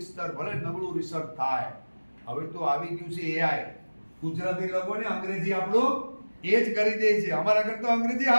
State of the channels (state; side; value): inverted; both; correlation -1.00